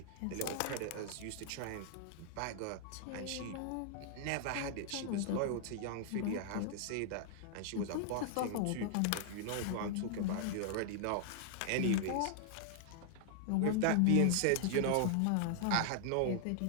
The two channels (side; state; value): both; different; correlation 0.00